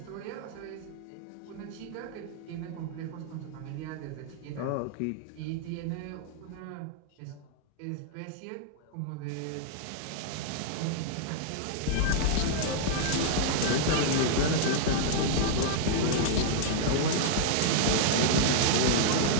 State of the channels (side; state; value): both; different; correlation -0.01